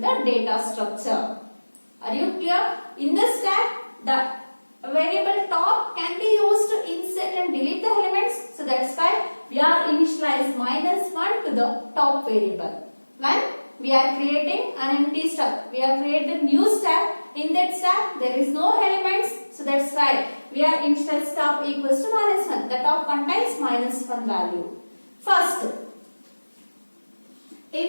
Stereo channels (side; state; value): both; inverted; correlation -1.00